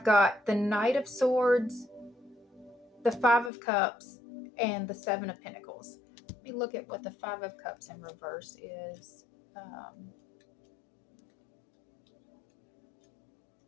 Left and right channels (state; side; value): drops out; right; at 3.5 s